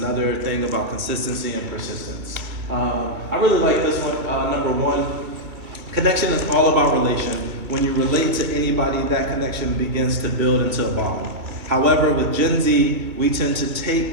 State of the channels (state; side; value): late; left; 2.6 ms